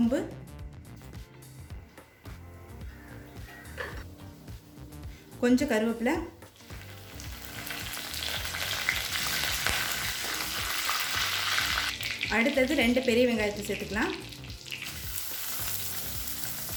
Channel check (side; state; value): both; identical; correlation 1.00